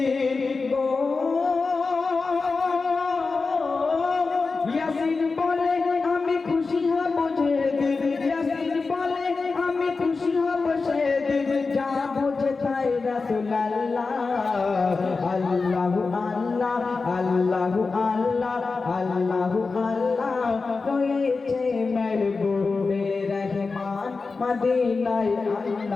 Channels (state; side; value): quieter; right; 4.2 dB